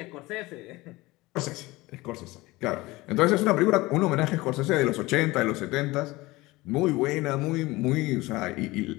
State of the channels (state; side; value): quieter; right; 20.6 dB